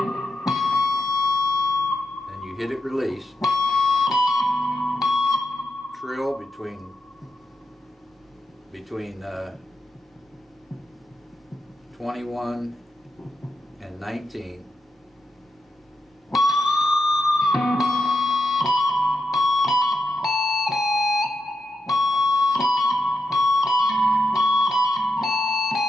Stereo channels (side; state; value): both; normal; correlation 0.86